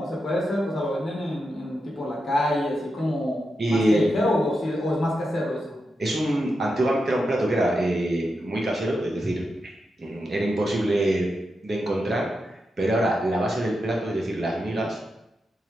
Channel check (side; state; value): both; normal; correlation 0.87